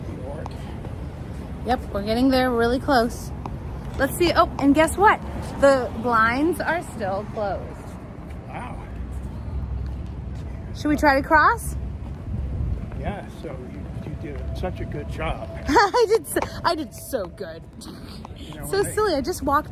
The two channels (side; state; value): both; identical; correlation 1.00